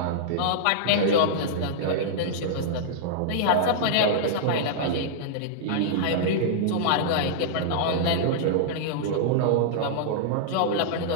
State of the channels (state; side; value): different; both; correlation -0.02